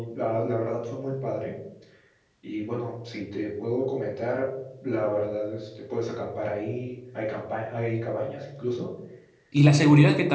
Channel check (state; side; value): identical; both; correlation 1.00